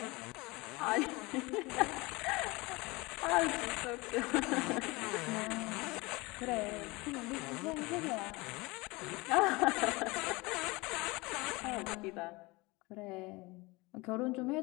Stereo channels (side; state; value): right; quieter; 23.8 dB